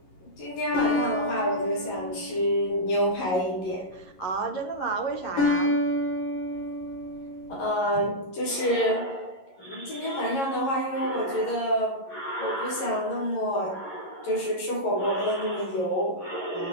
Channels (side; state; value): right; late; 11 ms